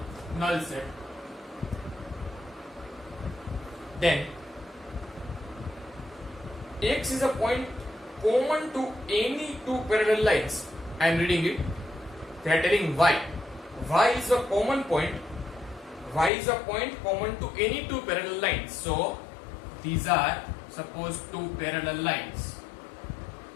null set. Then X is a point common to any 2 parallel lines. I am reading it. They are telling Y. Y is a common point. Y is a point common to any 2 parallel lines. So these are suppose 2 parallel lines.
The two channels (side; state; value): right; drops out; at 16.3 s